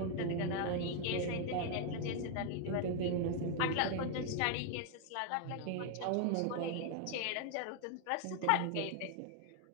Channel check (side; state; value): both; different; correlation 0.01